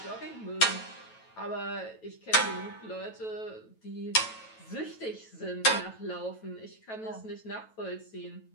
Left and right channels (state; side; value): late; right; 9.1 ms